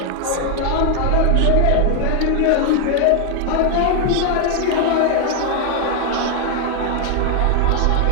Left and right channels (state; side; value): different; both; correlation 0.00